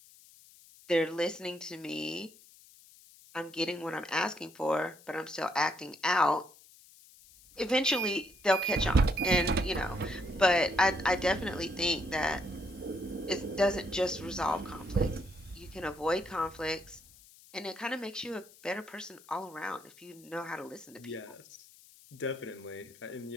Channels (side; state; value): left; noise; hiss, 24 dB below the sound